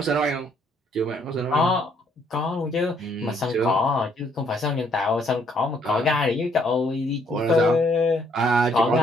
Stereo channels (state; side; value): normal; both; correlation 0.67